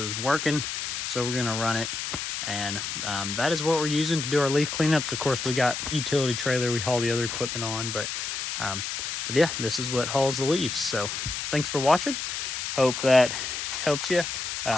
working, so we're gonna run it. And that is what we're using to do our leaf cleanups. Of course, we got utility trailer we haul the other equipment on, but yeah, this is what hauls the leaves. So thanks for watching. Hope that helps you.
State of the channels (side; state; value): left; noise; hiss, 4 dB below the sound